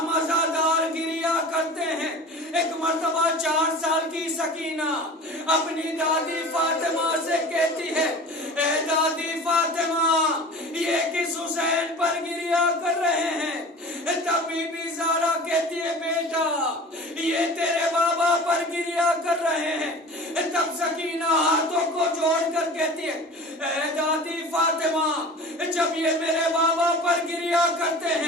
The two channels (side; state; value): both; normal; correlation 0.38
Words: عزادار گریا کرتے ہیں، ایک مرتبہ 4 سال کی سکینہ اپنی دادی فاطمہ سے کہتی ہے، اے دادی فاطمہ، یہ کس حسین پر گریا کر رہے ہیں؟ تب بی بی زارا کہتی ہے، بیٹا یہ تیرے بابا پر گریا کر رہے ہیں۔ تب سکینہ ہاتھوں کو جوڑ کر کہتی ہے، اے دادی فاطمہ، جب یہ میرے بابا پر گریا کرتے